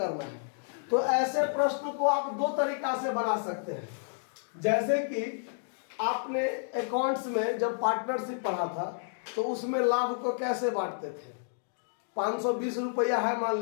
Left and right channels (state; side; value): silent; right; digital silence